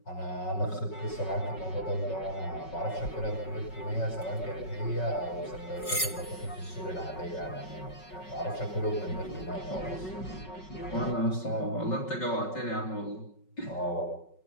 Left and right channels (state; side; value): late; right; 5.4 ms